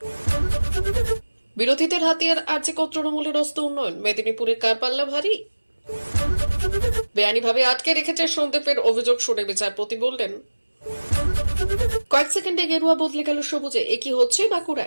বিরোধীদের হাতিয়ার আর্যিকর তৃণমূলের অস্ত্র উন্নয়ন, মেদিনীপুরের কারপাল্লা ভারী। বেআইনিভাবে আটকে রেখেছে সন্দীপের অভিযোগ শুনে বিচারপতি বললেন, কয়েক সেকেন্ডে গেরুয়া বদলে গেল সবুজে। একই হচ্ছে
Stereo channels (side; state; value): both; inverted; correlation -1.00